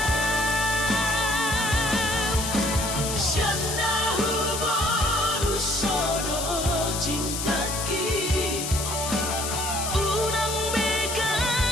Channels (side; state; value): left; noise; hiss, 4 dB below the sound